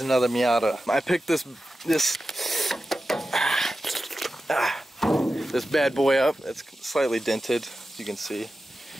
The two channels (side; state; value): both; normal; correlation 0.92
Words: Miata. I picked this bad boy up. It's slightly dented, as you can see.